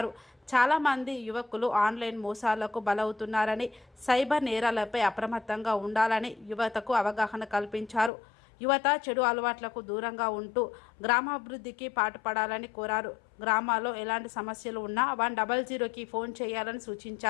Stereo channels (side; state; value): right; drops out; at 8.1 s